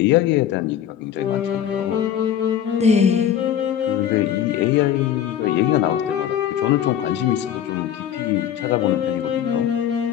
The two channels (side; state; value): right; quieter; 9.8 dB